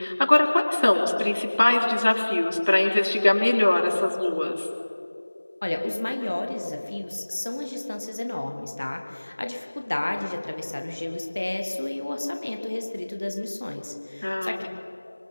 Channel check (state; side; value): inverted; both; correlation -1.00